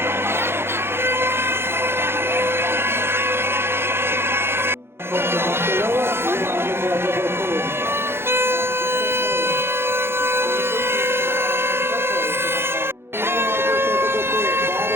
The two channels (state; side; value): late; left; 0.11 ms